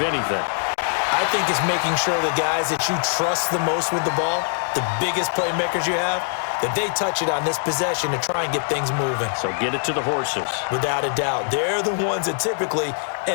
anything? I think it's making sure the guys that you trust the most with the ball, the biggest playmakers you have, that they touch it on this possession to try and get things moving. So get it to the horses. Without a doubt. They're the ones that typically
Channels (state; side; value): silent; right; digital silence